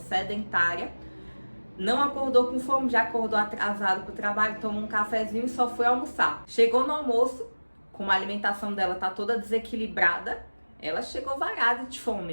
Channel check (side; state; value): both; inverted; correlation -1.00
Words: não acordou com fome, já acordou atrasado para o trabalho, tomou um cafezinho e só foi almoçar. Chegou no almoço, como a alimentação dela tá toda desequilibrada, ela chegou varada de